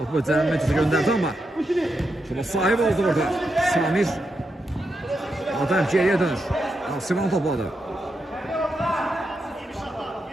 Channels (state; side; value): normal; both; correlation 0.85